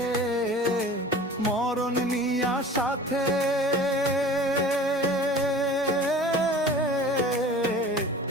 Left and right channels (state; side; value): normal; both; correlation 0.43